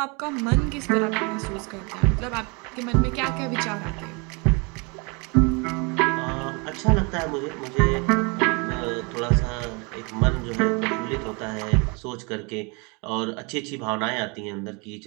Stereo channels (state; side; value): quieter; left; 30.9 dB